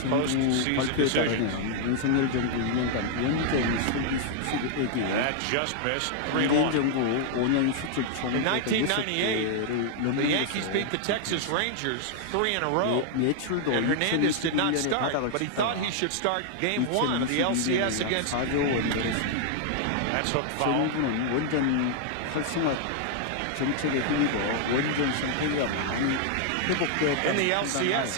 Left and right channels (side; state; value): both; different; correlation 0.00